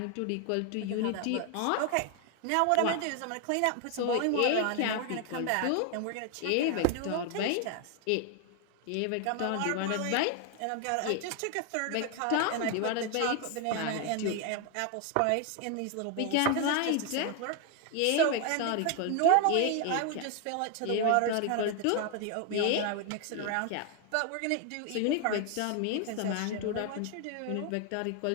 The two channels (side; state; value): both; different; correlation 0.01